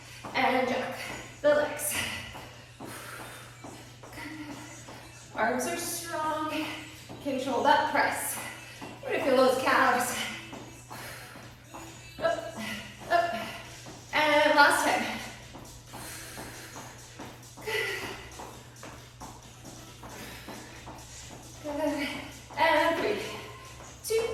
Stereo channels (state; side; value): identical; both; correlation 1.00